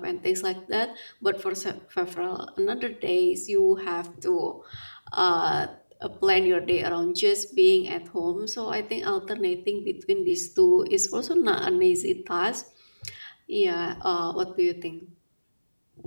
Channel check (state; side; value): inverted; both; correlation -1.00